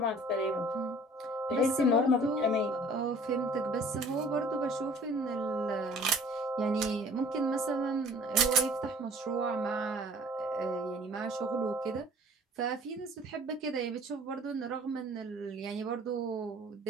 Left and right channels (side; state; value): both; normal; correlation 0.51